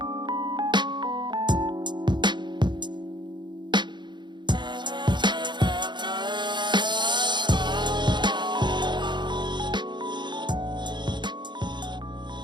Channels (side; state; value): left; late; 0.22 ms